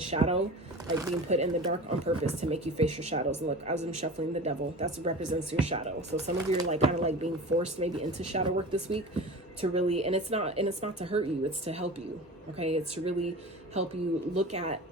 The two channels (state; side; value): normal; both; correlation 0.34